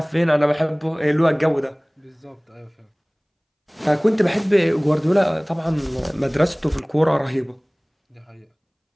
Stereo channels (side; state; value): both; identical; correlation 1.00